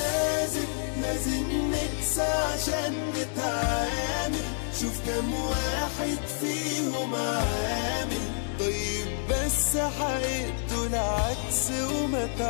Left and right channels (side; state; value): right; silent; digital silence